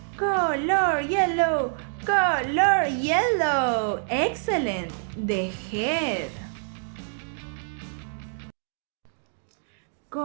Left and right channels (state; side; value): silent; left; digital silence